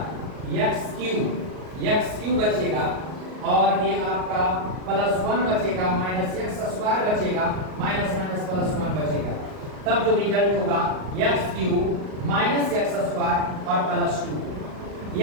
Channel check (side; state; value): left; late; 38 ms